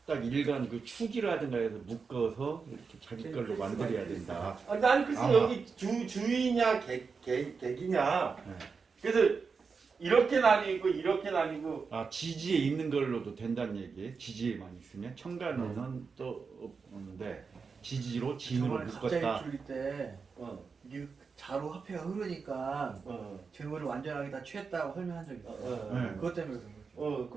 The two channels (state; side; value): quieter; left; 5.2 dB